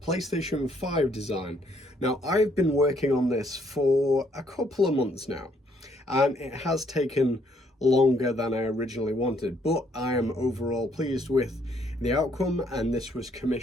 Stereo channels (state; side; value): normal; both; correlation 0.69